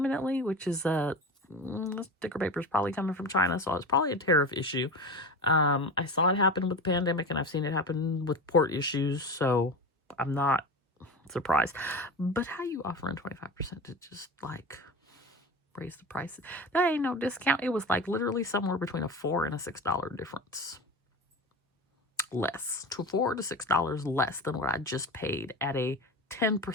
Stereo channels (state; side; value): normal; both; correlation 0.28